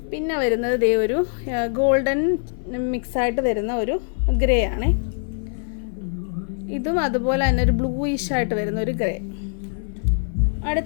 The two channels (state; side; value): silent; right; 56 dB below the other